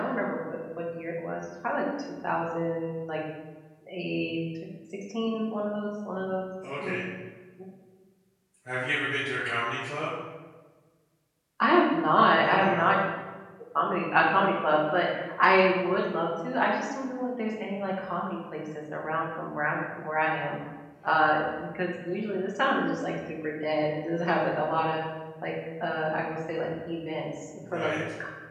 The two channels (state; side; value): identical; both; correlation 1.00